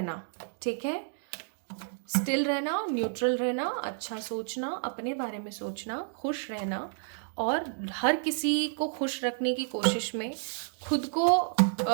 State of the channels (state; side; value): silent; left; digital silence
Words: ठीक है, स्टिल रहना, न्यूट्रल रहना, अच्छा सोचना, अपने बारे में सोचना, खुश रहना और हर किसी को खुश रखने की कोशिश में खुद को